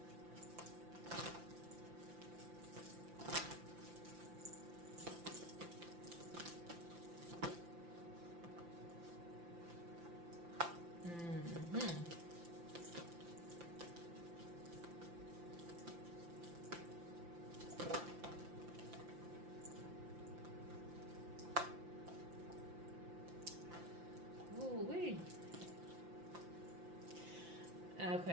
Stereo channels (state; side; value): late; left; 5.8 ms